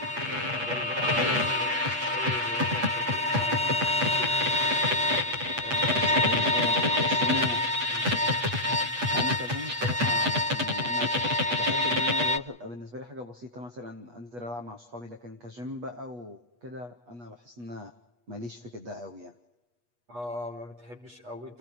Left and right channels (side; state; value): left; late; 8.3 ms